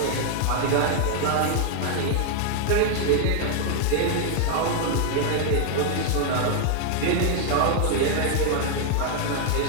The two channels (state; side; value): different; both; correlation 0.00